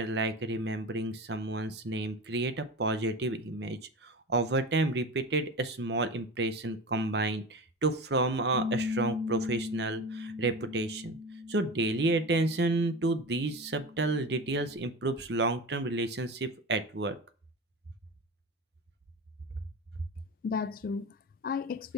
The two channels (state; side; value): normal; both; correlation 0.29